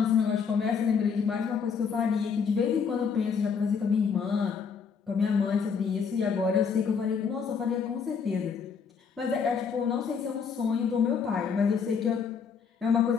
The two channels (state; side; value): quieter; right; 6.2 dB